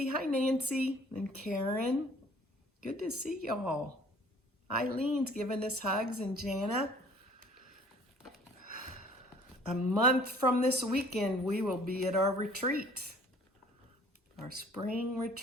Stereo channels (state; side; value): normal; both; correlation 0.53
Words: Hi, Nancy. And Karen. Good to see y'all. Eileen's giving us hugs, and Jana. A month from this weekend, we will be at our retreat, our spring